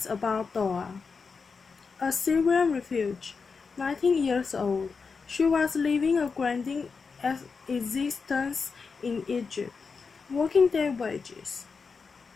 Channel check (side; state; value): right; quieter; 5.1 dB